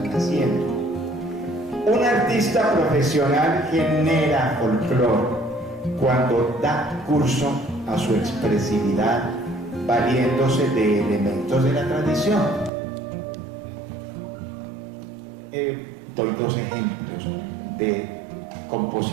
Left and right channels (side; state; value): left; drops out; at 12.7 s